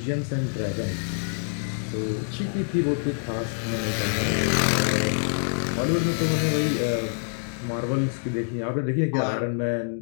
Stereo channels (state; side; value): silent; right; digital silence